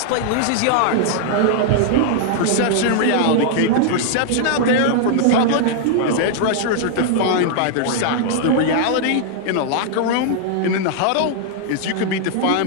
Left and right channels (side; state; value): both; different; correlation -0.01